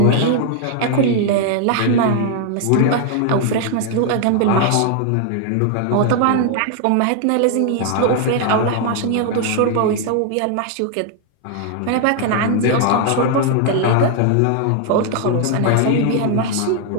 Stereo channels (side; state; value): both; different; correlation 0.00